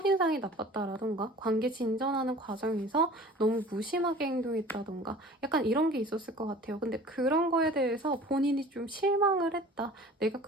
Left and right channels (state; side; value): normal; both; correlation 0.44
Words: 나빴다라던가 관계 진전하는 과정에서 너무 무심하게 행동했다던가 약간 약간 이런 게 있었을 것 같아요. 근데 그런 거에 대해서 본인이 좀 실망을 했다. 내가